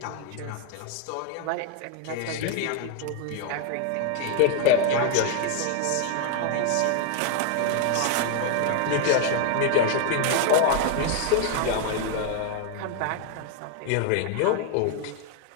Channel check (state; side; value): different; both; correlation 0.00